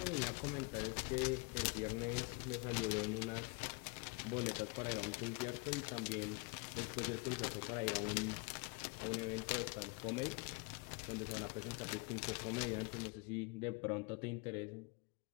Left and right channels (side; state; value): right; quieter; 30.9 dB